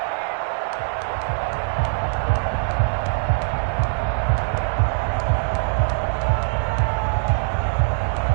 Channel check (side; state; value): left; silent; digital silence